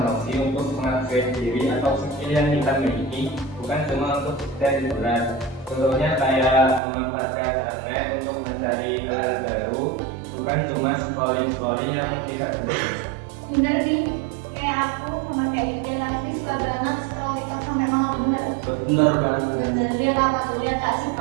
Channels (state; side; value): drops out; left; at 6.8 s